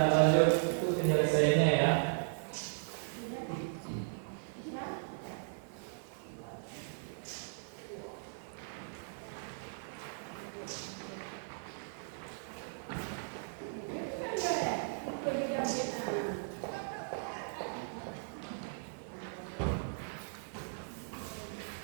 lanjut itu penyelesaiannya ya.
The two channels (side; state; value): left; silent; 53 dB below the other